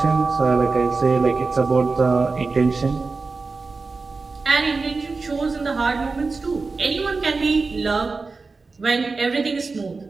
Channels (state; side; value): quieter; left; 4.1 dB